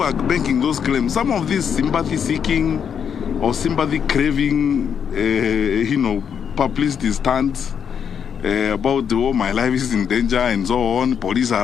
are making those claims, some of these sympathy-seeking or sympathy-craving, publicity stunts about, oh, my life is in danger and so on, police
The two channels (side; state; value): right; quieter; 7.6 dB